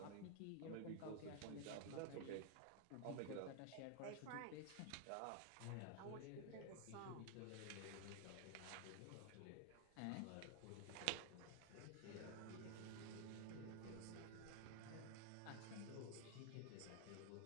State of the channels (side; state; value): both; different; correlation 0.01